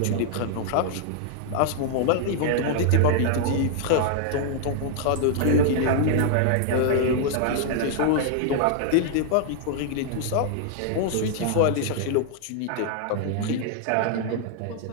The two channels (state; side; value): different; both; correlation 0.00